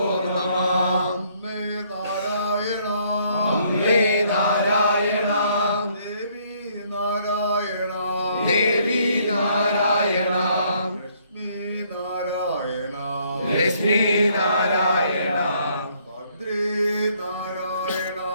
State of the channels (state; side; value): inverted; both; correlation -0.66